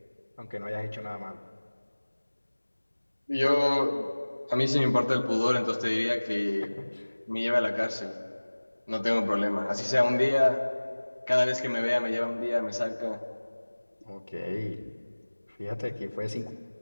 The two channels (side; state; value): both; inverted; correlation -1.00